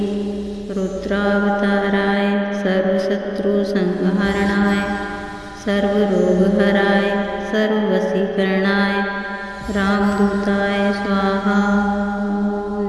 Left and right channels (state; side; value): identical; both; correlation 1.00